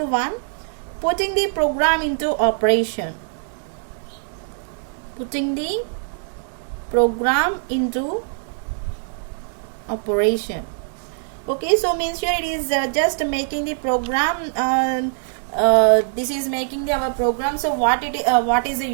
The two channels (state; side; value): silent; left; 60 dB below the other